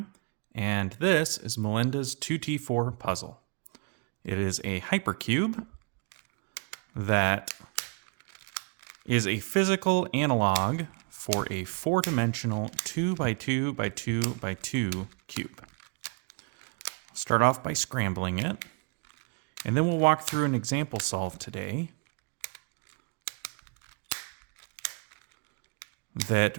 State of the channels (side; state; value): left; quieter; 34.5 dB